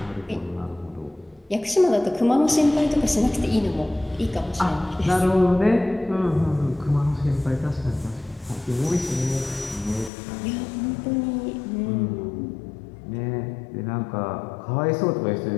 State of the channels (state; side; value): drops out; right; at 10.1 s